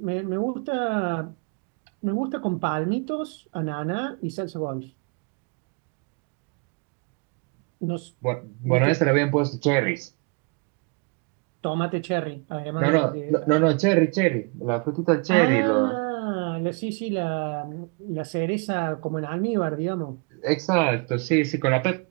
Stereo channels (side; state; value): left; quieter; 33.4 dB